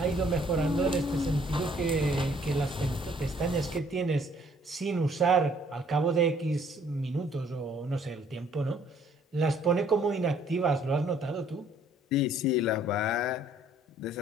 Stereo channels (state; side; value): normal; both; correlation 0.61